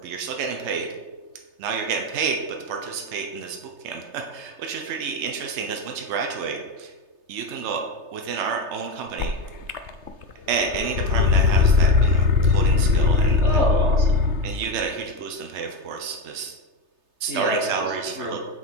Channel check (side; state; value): left; late; 3.3 ms